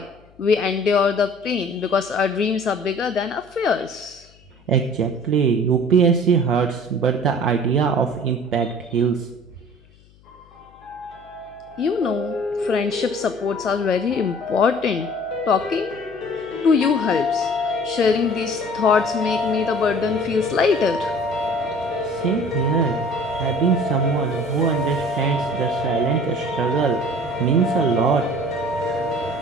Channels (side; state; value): left; noise; hum, 28 dB below the sound